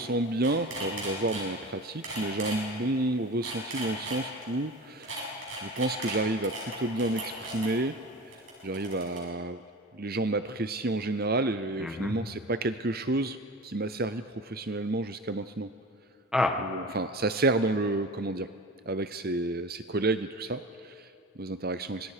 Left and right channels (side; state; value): both; normal; correlation 0.33